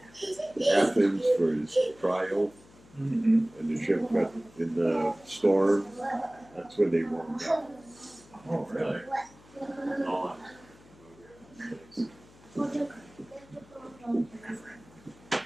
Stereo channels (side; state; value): left; noise; hum, 25 dB below the sound